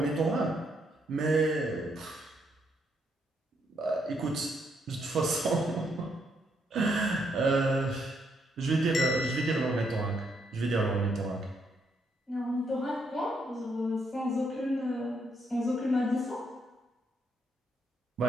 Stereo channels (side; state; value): both; normal; correlation 0.75